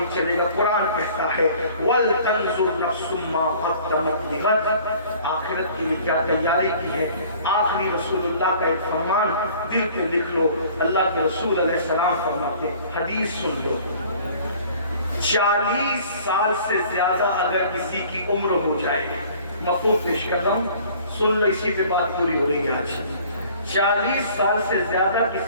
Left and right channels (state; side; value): inverted; both; correlation -0.51